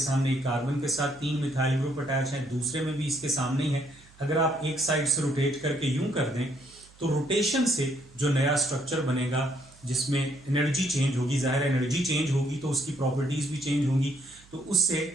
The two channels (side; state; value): right; noise; hum, 26 dB below the sound